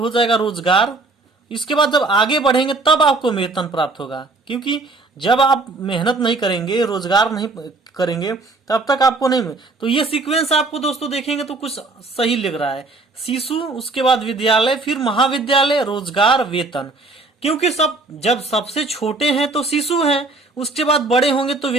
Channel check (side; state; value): left; quieter; 3.3 dB